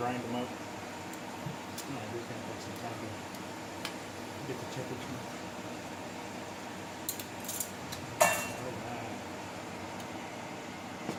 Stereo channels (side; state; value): both; identical; correlation 1.00